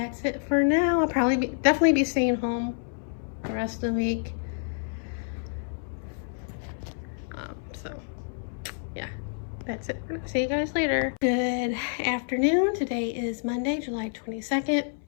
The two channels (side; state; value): right; silent; 59 dB below the other